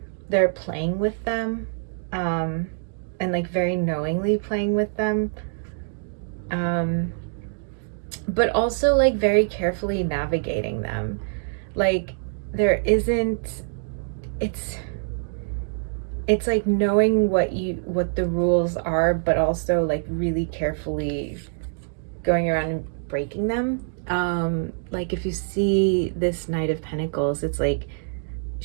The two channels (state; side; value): silent; left; digital silence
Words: they're playing with them, and like very knowingly playing with them, but also like very carefully navigating them. Like there isn't, it's like knowing what the rules are, but also like really carefully going around and breaking them. Like if you see this Knight of Pentacles, it's like